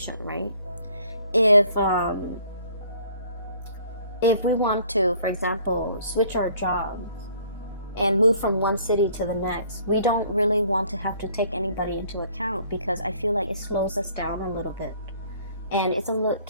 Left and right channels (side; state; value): both; inverted; correlation -0.58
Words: right? If we want to, for example, switch our jobs and move from one city to the next, we don't really want to have to take anybody into account, because I feel like it slows us down a little bit. And